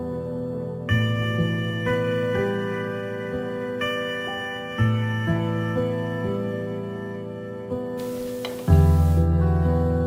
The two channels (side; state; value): both; identical; correlation 1.00